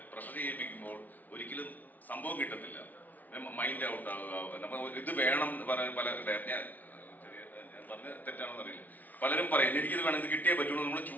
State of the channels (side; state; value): right; late; 0.078 ms